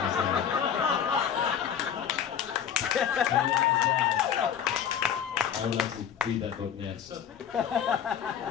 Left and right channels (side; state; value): right; quieter; 8.5 dB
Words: would like to read that book next.